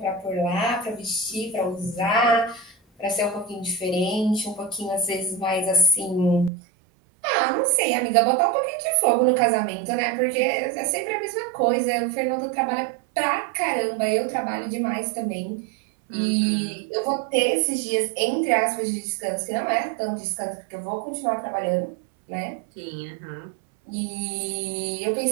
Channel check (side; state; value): left; drops out; at 6.5 s